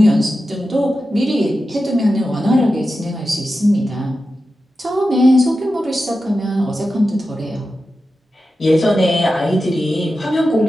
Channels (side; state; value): both; normal; correlation 0.92